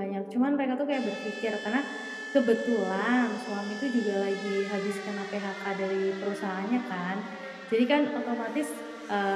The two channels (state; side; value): identical; both; correlation 1.00